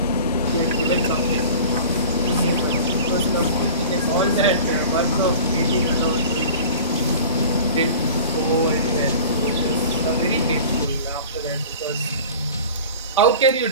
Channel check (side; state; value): both; inverted; correlation -0.40